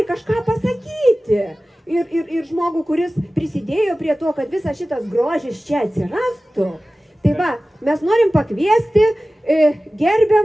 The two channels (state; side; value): normal; both; correlation 0.96